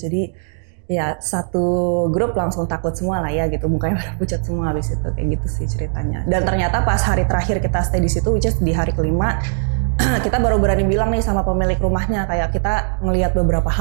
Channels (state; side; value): silent; left; digital silence